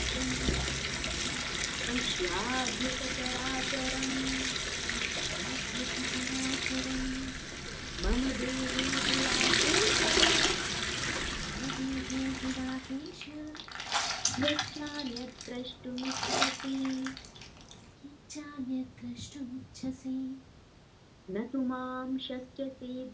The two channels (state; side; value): identical; both; correlation 1.00